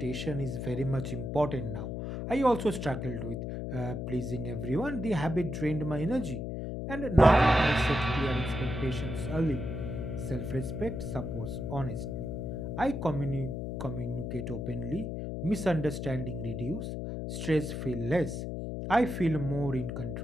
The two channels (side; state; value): left; noise; hum, 4 dB below the sound